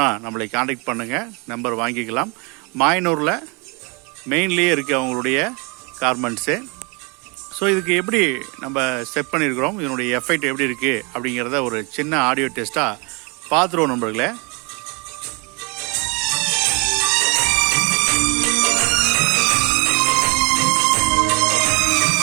நம்மளை காண்டாக்ட் பண்ணுங்கள், நம்பர் வாங்கிக்கலாம். மாயனூரில் மெயின்லேயே இருக்குது அவங்களுடைய கார்மெண்ட்ஸு. ஸோ இதுக்கு எப்படி நம்ம செட் பண்ணியிருக்கிறோம், இதனுடைய எஃபெக்ட் எப்படி இருக்குது அப்படிங்கிறத ஒரு சின்ன ஆடியோ டெஸ்ட்டாக பார்த்துருவோம் நண்பர்களே.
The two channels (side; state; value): left; quieter; 31.1 dB